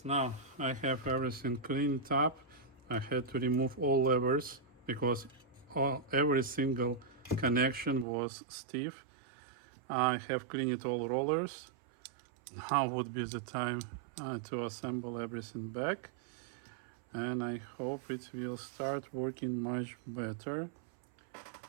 now I have everything cleaned up. I had to remove all levers because every single connection was stiff. I have cleaned all rollers. Now would be the time to assemble everything back, and I hope it will start working much better.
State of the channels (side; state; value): left; drops out; at 8.1 s